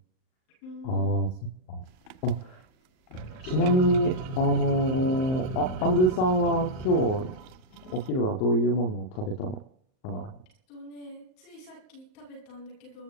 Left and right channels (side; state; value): right; late; 38 ms